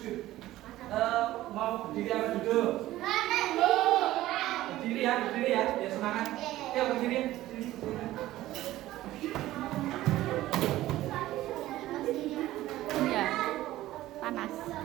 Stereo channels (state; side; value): quieter; left; 15.5 dB